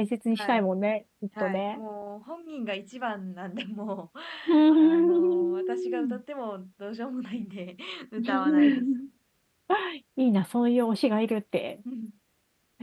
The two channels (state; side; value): identical; both; correlation 1.00